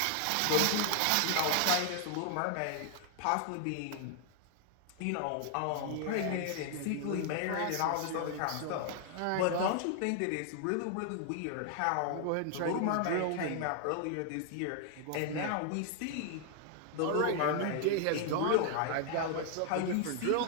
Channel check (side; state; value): both; different; correlation 0.00